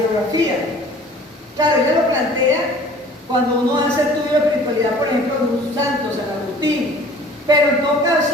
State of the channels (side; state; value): both; normal; correlation 0.49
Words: Claro, ella lo plantea cuando uno hace estudio de espiritualidad, por ejemplo, de un santo, San Agustín. Pero en todo